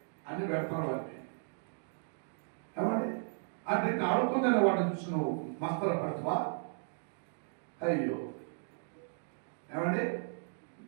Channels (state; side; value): silent; left; digital silence